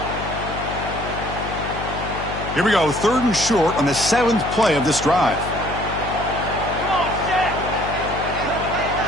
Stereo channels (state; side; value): noise; left; hum, 8 dB below the sound